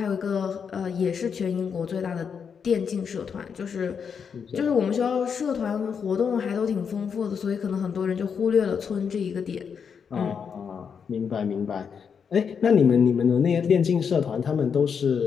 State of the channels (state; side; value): quieter; right; 6.7 dB